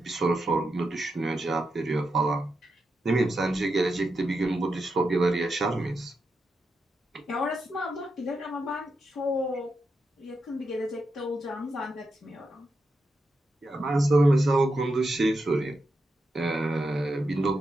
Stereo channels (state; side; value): normal; both; correlation 0.86